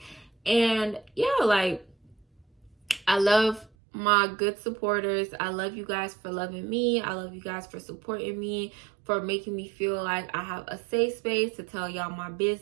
And yeah, like, I love my good supporters. I love you guys for loving me. I love you guys for supporting me, for making me feel like I have a safe space to tell y'all my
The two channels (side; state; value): left; drops out; at 3.7 s